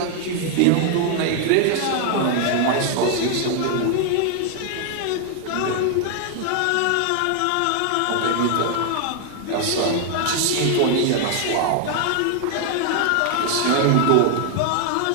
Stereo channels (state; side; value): different; both; correlation 0.00